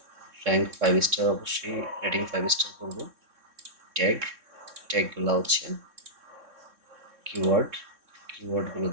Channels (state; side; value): late; left; 3.6 ms